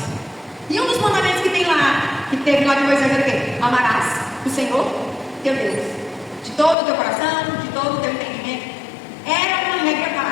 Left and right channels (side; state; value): right; drops out; at 6.8 s